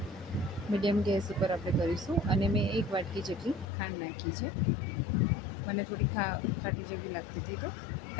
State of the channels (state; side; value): drops out; right; at 3.7 s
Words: મીડિયમ ગેસ ઉપર આપણે કરીશું. અને મેં એક વાટકી જેટલી ખાંડ નાખી છે. મને થોડી ખાટી જેવી લાગતી હતી, તો